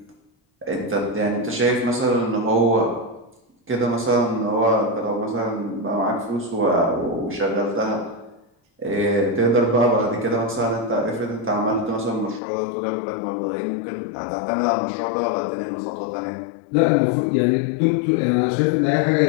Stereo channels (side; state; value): right; drops out; at 12.4 s